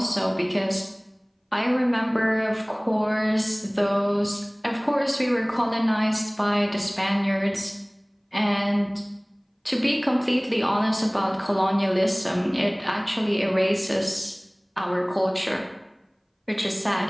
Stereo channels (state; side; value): identical; both; correlation 1.00